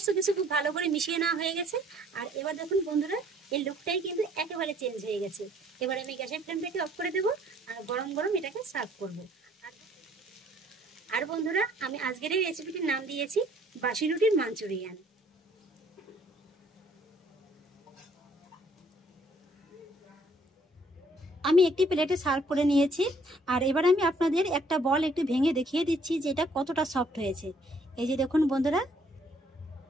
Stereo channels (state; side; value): normal; both; correlation 0.62